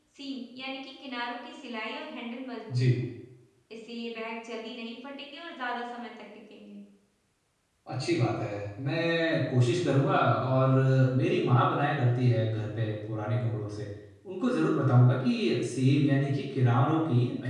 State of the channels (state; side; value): identical; both; correlation 1.00